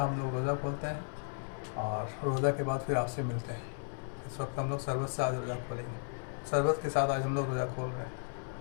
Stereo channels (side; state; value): right; silent; 55 dB below the other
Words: हम लोग रोज़ा खोलते हैं और रोज़ा के बाद फिर आपसे मिलते हैं। इस वक्त हम लोग शरबत से आज रोज़ा खोलेंगे, शरबत के साथ आज हम लोग रोज़ा खोल रहे हैं।